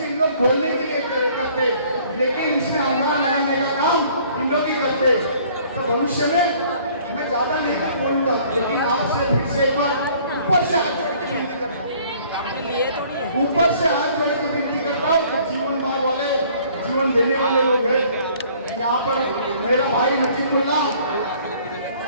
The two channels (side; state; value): both; inverted; correlation -0.56